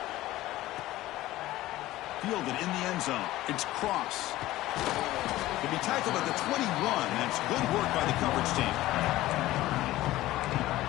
Fielded in the end zone. It's Cross. He'll be tackled at the 21. That's good work by the coverage team.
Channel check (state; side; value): quieter; right; 16.3 dB